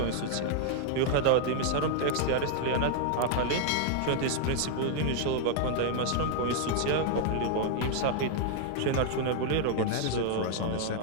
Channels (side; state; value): both; different; correlation -0.01